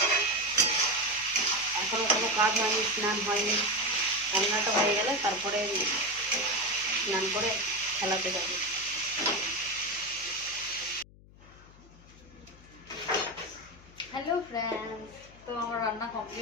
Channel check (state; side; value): noise; left; hum, 23 dB below the sound